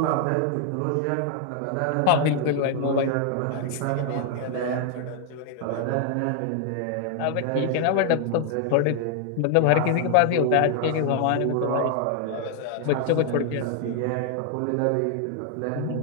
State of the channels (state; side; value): different; both; correlation 0.00